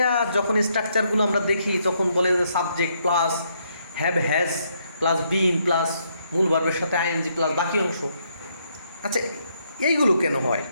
যখন স্ট্রাকচারগুলো আমরা দেখি তখন বলে যে subject plus have has plus been plus মূল ভার্বের সাথে আইএনজি প্লাস বাকি অংশ। আচ্ছা এইগুলো কেন হয়?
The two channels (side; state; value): both; inverted; correlation -0.74